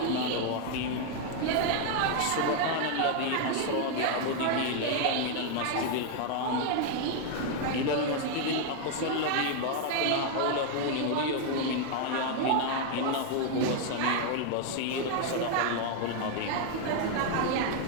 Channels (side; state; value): both; different; correlation 0.00